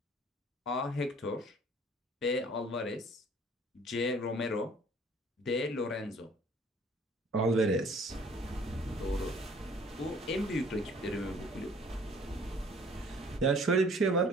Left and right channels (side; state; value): both; normal; correlation 0.54